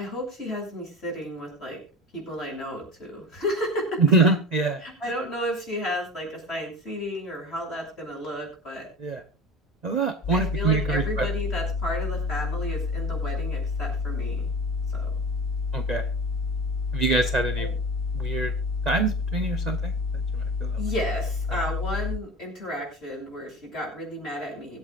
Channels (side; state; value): both; normal; correlation 0.34